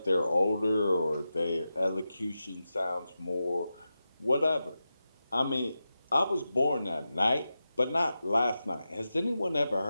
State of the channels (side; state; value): both; inverted; correlation -0.91